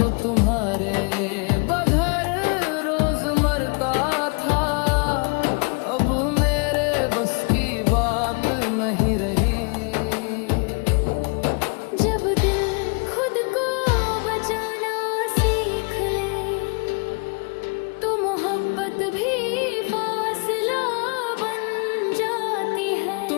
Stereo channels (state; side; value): quieter; right; 35.0 dB